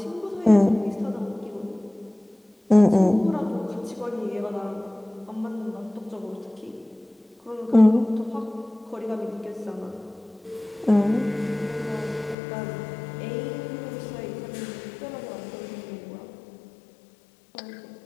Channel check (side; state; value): right; drops out; at 12.4 s